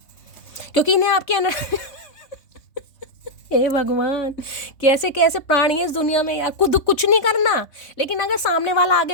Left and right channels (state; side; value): late; right; 3.3 ms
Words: क्योंकि इन्हें आपके हे भगवान, कैसे कैसे प्राणी है इस दुनिया में यार। खुद कुछ नहीं करना, लेकिन अगर सामने वाला